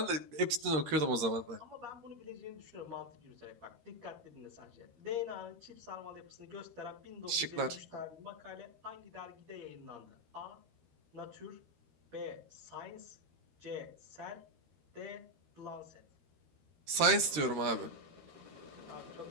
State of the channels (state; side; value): late; left; 13 ms